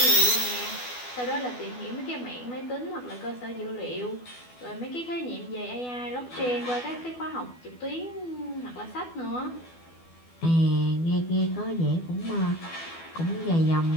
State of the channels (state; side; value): late; right; 12 ms